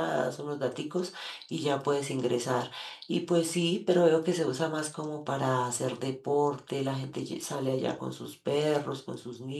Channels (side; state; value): both; identical; correlation 1.00